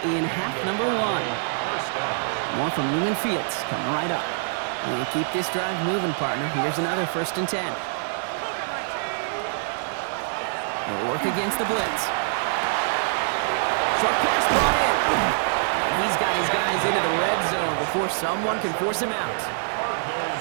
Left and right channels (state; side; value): silent; left; digital silence